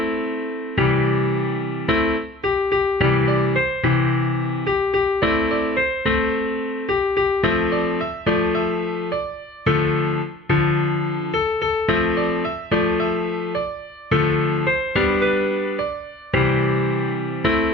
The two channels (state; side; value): normal; both; correlation 0.51